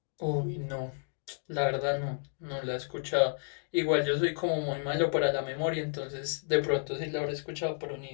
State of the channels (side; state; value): right; silent; digital silence